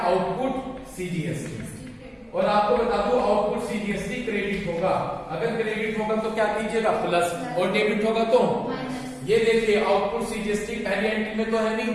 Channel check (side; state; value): both; identical; correlation 1.00